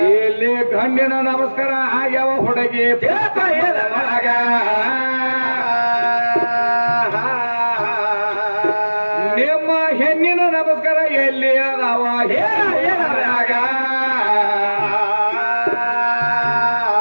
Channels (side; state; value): both; inverted; correlation -1.00